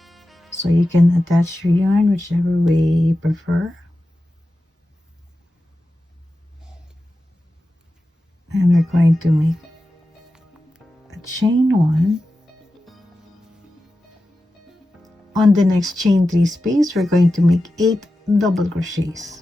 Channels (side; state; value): both; normal; correlation 0.93